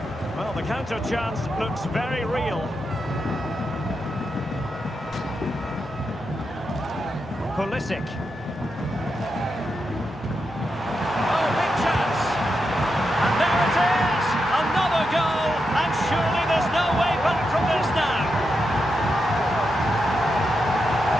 Well, the counter chance looks very real. Pulisic. Oh, big chance. And there it is! Another goal, and surely there's no way back from this now.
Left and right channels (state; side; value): normal; both; correlation 0.86